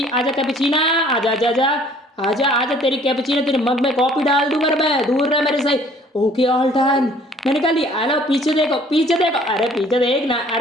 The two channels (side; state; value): both; normal; correlation 0.56